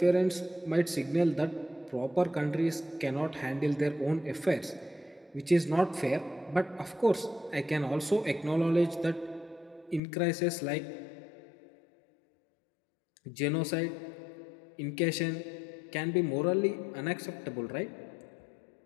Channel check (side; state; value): right; drops out; at 10.0 s